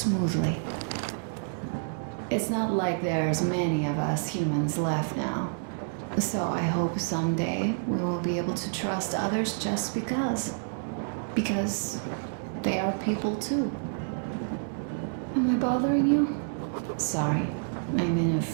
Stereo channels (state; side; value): silent; left; digital silence